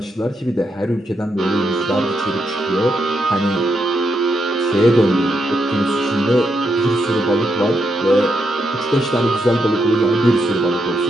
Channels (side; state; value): both; normal; correlation 0.81